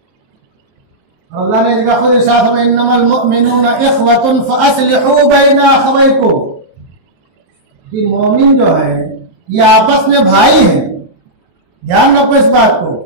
और अल्लाह ने इसका खुद इरशाद फरमाया इन्नमल मुअमिनूना इख़वतुन फअस्लिहू बैना अख़वैकुम, कि मोमिन जो है ये आपस में भाई हैं। ध्यान रखो इस बात को।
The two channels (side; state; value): left; late; 23 ms